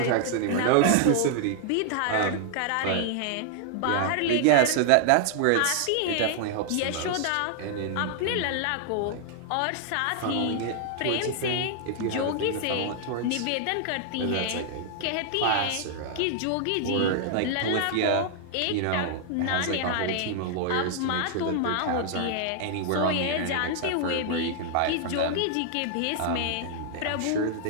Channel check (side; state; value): both; different; correlation 0.00